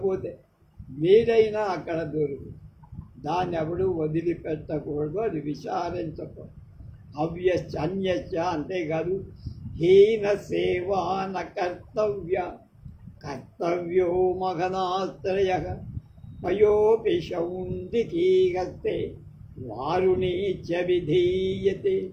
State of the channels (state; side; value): identical; both; correlation 1.00